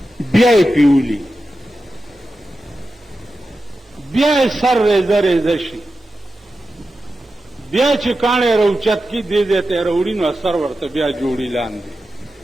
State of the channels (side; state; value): both; normal; correlation 0.91